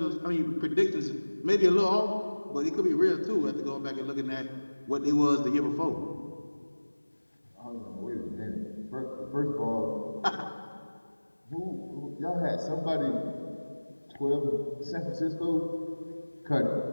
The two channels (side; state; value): both; inverted; correlation -1.00